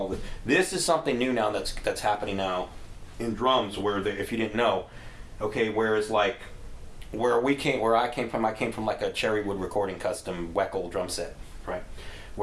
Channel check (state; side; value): identical; both; correlation 1.00